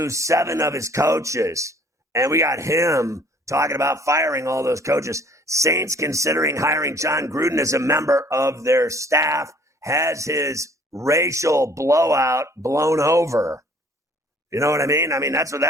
7 of his coaches. And we got him talking about firing all those coaches. Saints considering hiring John Gruden as a member of their staff, has his racial blowout blown over. You know what I mean? I mean, that's what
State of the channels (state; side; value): normal; both; correlation 0.56